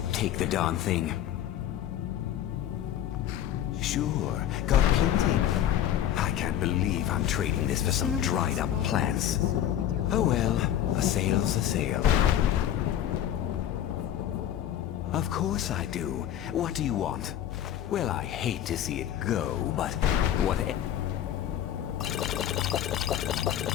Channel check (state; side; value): quieter; right; 11.1 dB